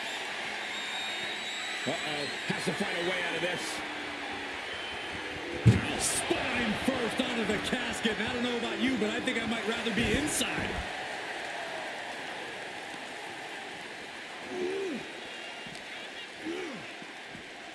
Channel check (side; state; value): both; identical; correlation 1.00